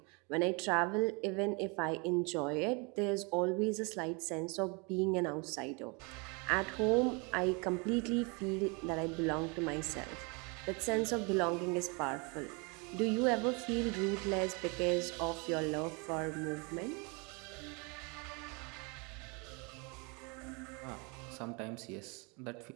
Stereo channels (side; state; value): left; quieter; 30.9 dB